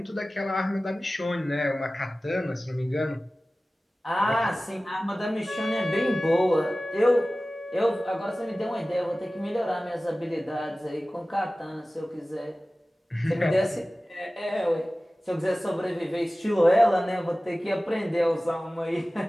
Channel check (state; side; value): normal; both; correlation 0.97